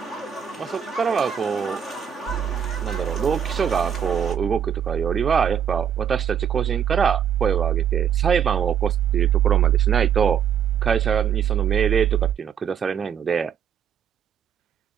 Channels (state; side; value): quieter; left; 8.4 dB